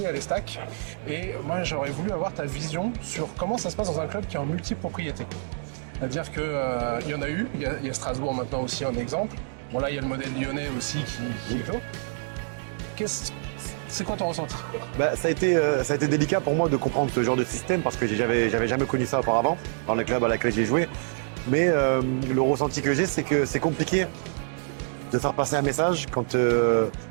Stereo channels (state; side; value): silent; left; digital silence